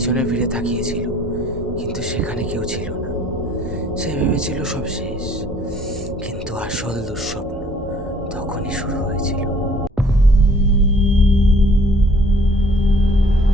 ফিরে তাকিয়েছিল, কিন্তু সেখানে কেউ ছিল না। সে ভেবেছিল সব শেষ, কিন্তু আসল দুঃস্বপ্ন তখনই শুরু হয়েছিল।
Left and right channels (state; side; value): normal; both; correlation 0.57